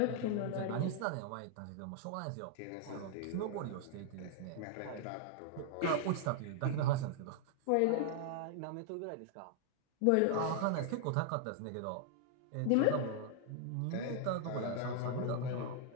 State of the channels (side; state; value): both; different; correlation -0.01